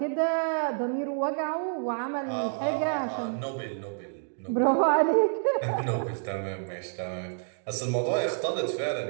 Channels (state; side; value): silent; left; digital silence